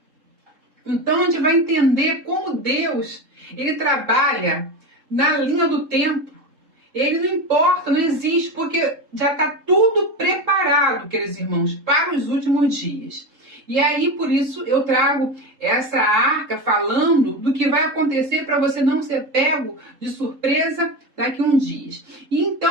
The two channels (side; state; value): left; late; 3.8 ms